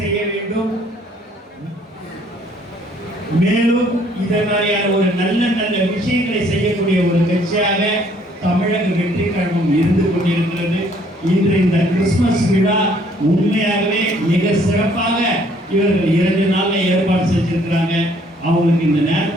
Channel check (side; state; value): both; normal; correlation 0.62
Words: செய்ய வேண்டும். மேலும் இதை மாதிரியான ஒரு நல்ல நல்ல விஷயங்களை செய்யக்கூடிய ஒரு கட்சியாக தமிழக வெற்றி கழகம் இருந்து கொண்டிருக்கிறது. இன்று இந்த கிறிஸ்துமஸ் விழா உண்மையாகவே மிக சிறப்பாக இவர்கள் 2 நாள்ல ஏற்பாடு செஞ்சிருக்கிறாங்க. அவங்களுக்கு இந்த